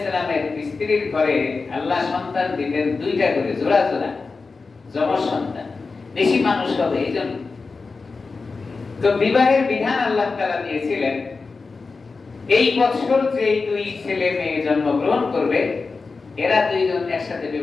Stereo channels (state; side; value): quieter; right; 4.2 dB